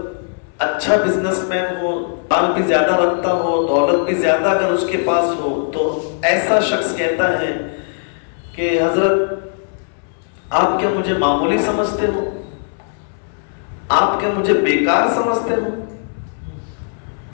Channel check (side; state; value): right; silent; 67 dB below the other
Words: اچھا بزنس مین ہو، مال بھی زیادہ رکھتا ہو، دولت بھی زیادہ اگر اس کے پاس ہو، تو ایسا شخص کہتا ہے کہ حضرت آپ کیا مجھے معمولی سمجھتے ہو؟ آپ کیا مجھے بیکار سمجھتے ہو؟